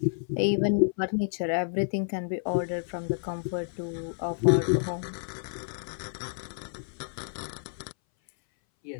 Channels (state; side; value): silent; right; 58 dB below the other